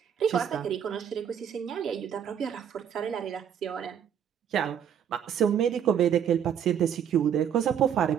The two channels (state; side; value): quieter; left; 8.7 dB